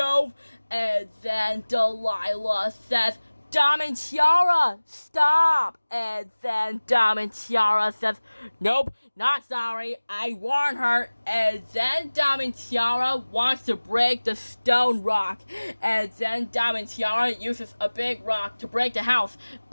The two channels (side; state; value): both; inverted; correlation -1.00